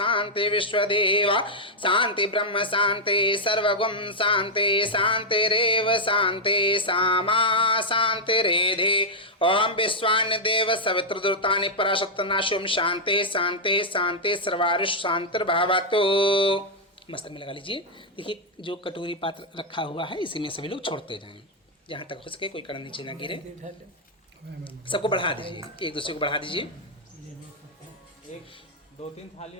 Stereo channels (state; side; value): normal; both; correlation -0.04